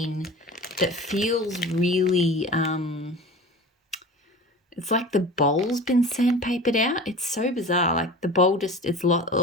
that feels really, it's like the bowl's been sandpapered out. It's so bizarre. Like the bowl just,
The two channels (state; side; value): normal; both; correlation 0.36